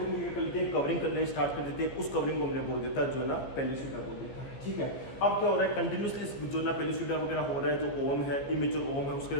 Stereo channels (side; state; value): right; late; 15 ms